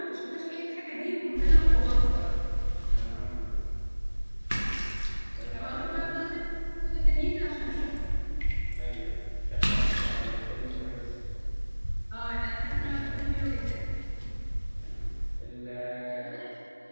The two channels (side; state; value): both; inverted; correlation -1.00